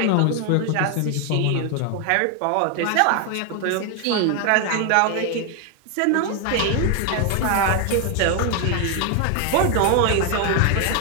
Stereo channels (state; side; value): different; both; correlation 0.01